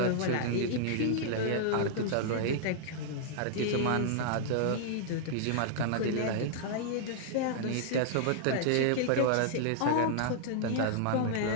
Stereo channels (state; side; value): different; both; correlation -0.01